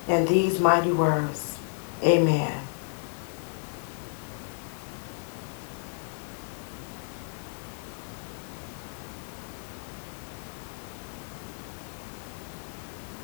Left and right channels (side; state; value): right; silent; 57 dB below the other